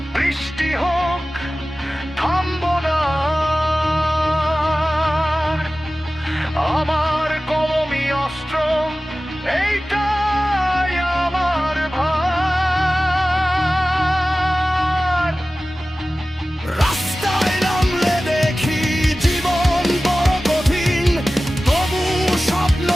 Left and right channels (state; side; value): normal; both; correlation 0.96